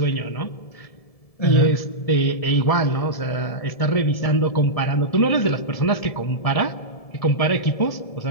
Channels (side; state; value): right; late; 1.7 ms